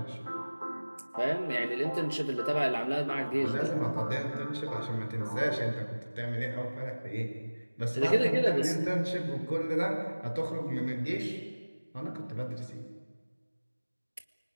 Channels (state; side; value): inverted; both; correlation -1.00